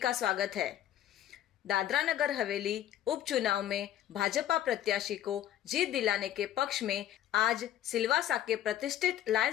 स्वागत है। दादरा नगर हवेली उपचुनाव में भाजपा प्रत्याशी को जीत दिलाने के पक्ष में आज सिलवासा के प्रतिष्ठित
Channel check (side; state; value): right; quieter; 12.0 dB